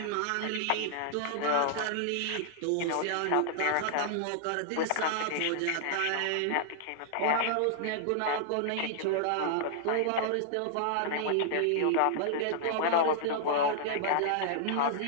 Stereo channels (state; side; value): different; both; correlation -0.01